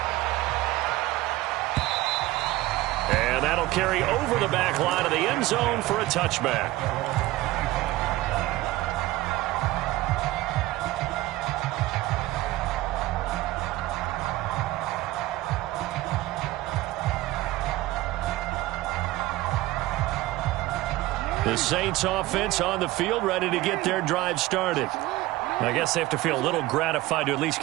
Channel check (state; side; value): quieter; left; 17.8 dB